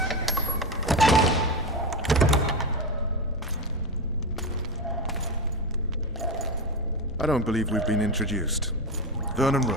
I don't believe we've been introduced. Vernon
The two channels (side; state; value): both; normal; correlation 0.15